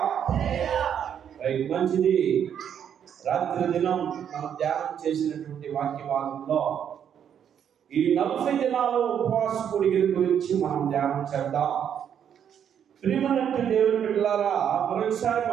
రైట్, మంచిది. రాత్రి దినం మనం ధ్యానం చేసినటువంటి వాక్య భాగంలో ఈ 40 దినాలు ఉపవాస కూడికల గురించి మనం ధ్యానం చేద్దాం. ప్రియమైనటువంటి దేవుని బిడ్డలారా, మరొకసారి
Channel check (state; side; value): quieter; left; 8.7 dB